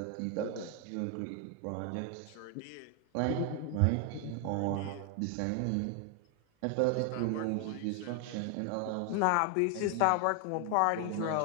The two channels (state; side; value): different; both; correlation 0.00